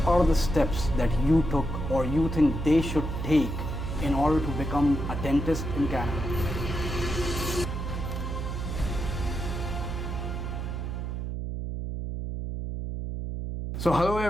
are the steps that you took or you think they should take in order to become a dentist in Canada? So hello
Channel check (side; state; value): right; noise; hum, 4 dB below the sound